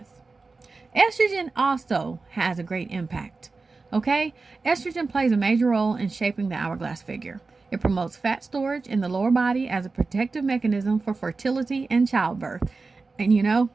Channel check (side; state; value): left; quieter; 4.0 dB